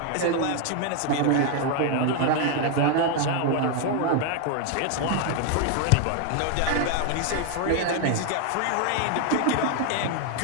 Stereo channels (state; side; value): different; both; correlation 0.01